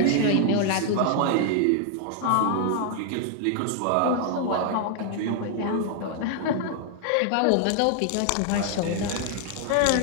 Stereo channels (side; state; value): both; different; correlation -0.01